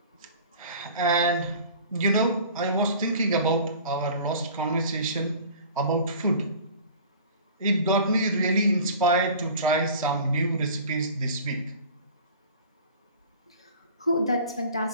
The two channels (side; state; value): both; inverted; correlation -0.43